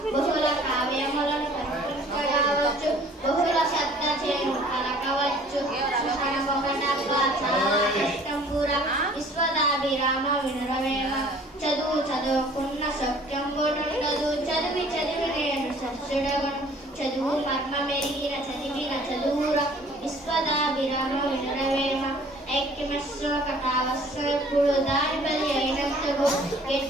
బహుళ కావ్యములను కనుకవచ్చు బహుళ శబ్ద చేను కలకవచ్చు చాలా కష్టంబుర విశ్వదాభిరామ వినరవేమ చదువు చదువుకున్న సత్యంబునుండదు చదివి చదివి నేను సత్సుడవను చదువు మర్మ మెరిగిన చదివిన చదువుర విశ్వదాభిరామ వినరవేమ ఐక్యమస్వకటావస్వప్పుడు దారి బలి అయినంతకు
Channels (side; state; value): both; normal; correlation 0.53